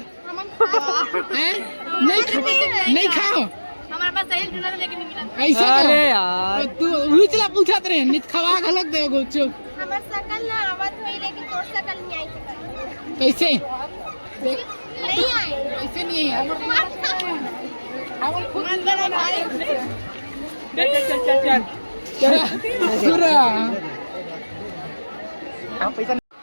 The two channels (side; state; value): both; inverted; correlation -1.00